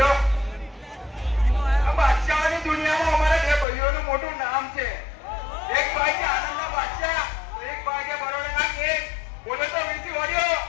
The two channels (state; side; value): drops out; right; at 3.7 s